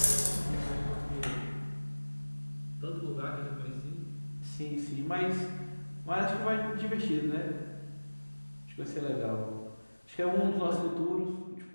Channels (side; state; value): both; inverted; correlation -1.00